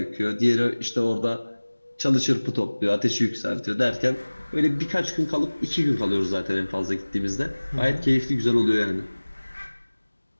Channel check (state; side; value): inverted; both; correlation -1.00